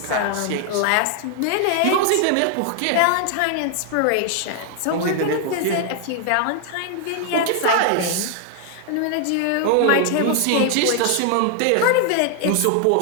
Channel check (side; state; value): both; different; correlation 0.00